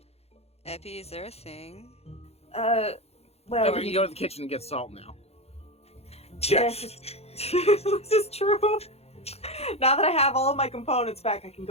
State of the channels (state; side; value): late; right; 0.30 ms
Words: Epi, is there a thing? Well... We can go to the kitchen and get salt now. Yeah. This is true. Now that I have all of my components back, I can